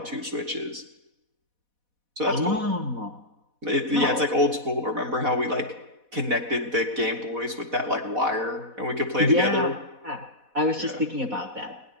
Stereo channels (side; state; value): left; late; 4.1 ms